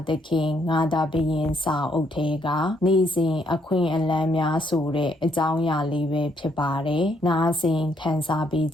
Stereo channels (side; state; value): both; normal; correlation 0.72